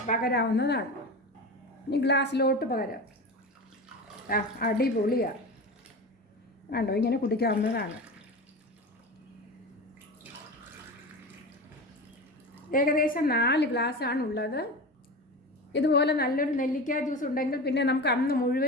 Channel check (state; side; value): normal; both; correlation 0.27